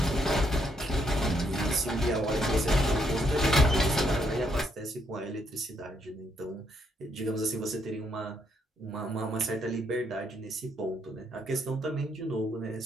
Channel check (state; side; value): normal; both; correlation 0.74